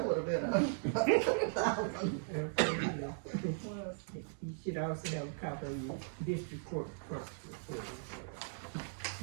would have been You should also have a copy of your district court clerk's report.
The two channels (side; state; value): left; silent; digital silence